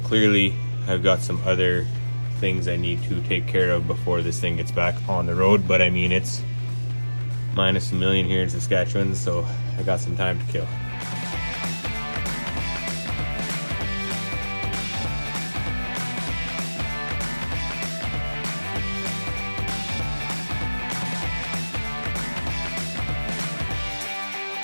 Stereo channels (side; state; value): both; inverted; correlation -1.00